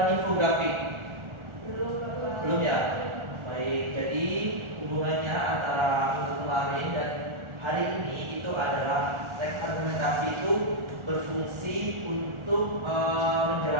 infografi? Belum, Bapak. Belum ya? Baik, jadi hubungannya antara minggu kemarin dan hari ini itu adalah teks argumentasi itu berfungsi untuk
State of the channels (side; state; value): left; late; 1.4 ms